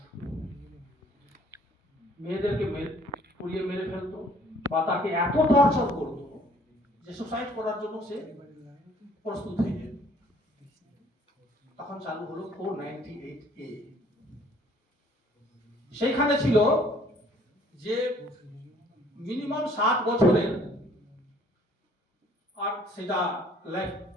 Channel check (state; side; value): normal; both; correlation 0.58